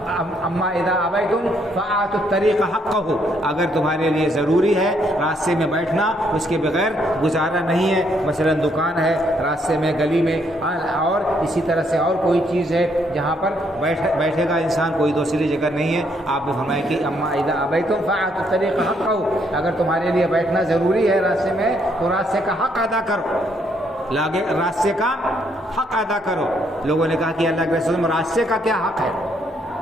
اما اذا ابیتم فآتوا الطریق حقہ، اگر تمہارے لیے ضروری ہے راستے میں بیٹھنا، اس کے بغیر گزارا نہیں ہے، مثلا دکان ہے راستے میں، گلی میں، اور اسی طرح سے اور کوئی چیز ہے جہاں پر بیٹھے گا انسان، کوئی دوسری جگہ نہیں ہے، آپ نے فرمایا کہ اما اذا ابیتم فآتوا الطریق حقہ، اگر تمہارے لیے بیٹھنا ضروری ہے راستے میں تو راستے کا حق ادا کرو، راستے کا حق ادا کرو۔ لوگوں نے کہا کہ اللہ کے رسول راستے کا کیا حق ہے؟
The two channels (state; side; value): normal; both; correlation 0.71